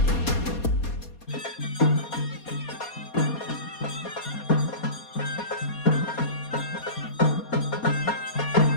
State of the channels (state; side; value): late; right; 4.2 ms